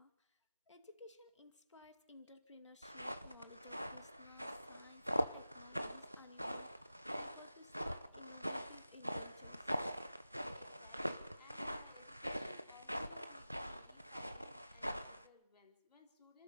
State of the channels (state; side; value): inverted; both; correlation -0.95